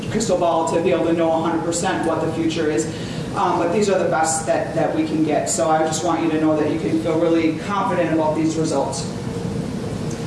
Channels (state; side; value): identical; both; correlation 1.00